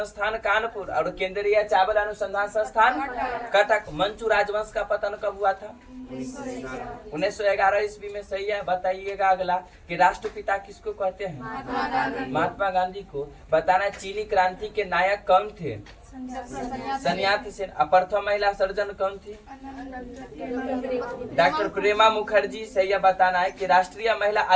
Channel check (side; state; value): both; identical; correlation 1.00